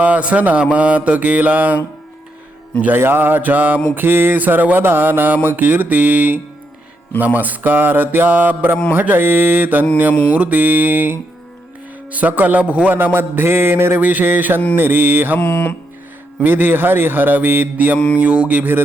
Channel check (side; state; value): both; normal; correlation 0.80